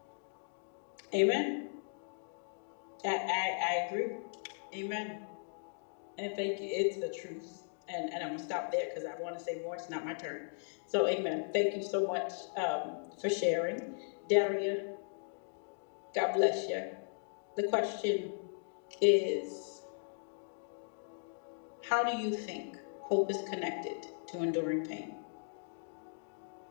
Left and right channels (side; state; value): right; silent; digital silence